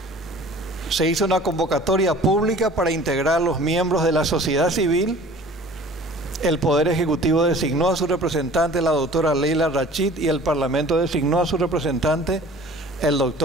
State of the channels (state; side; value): normal; both; correlation 0.46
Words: Se hizo una convocatoria pública para integrar los miembros de la sociedad civil. El Poder Ejecutivo designó a su representante, la doctora Leila Rachid, y el Parlamento designó a su representante, el